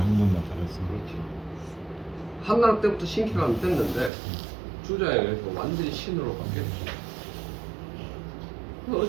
달았어요. 그렇죠. 한나라 때부터 신기가 됐는데 주자에 의해서 완전히 신으로 바뀌었죠.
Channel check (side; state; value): left; drops out; at 4.1 s